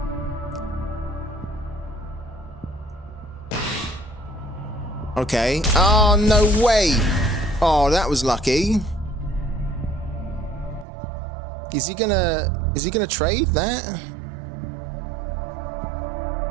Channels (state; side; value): drops out; left; at 10.9 s